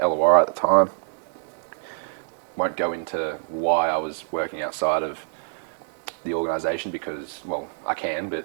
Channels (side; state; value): left; silent; digital silence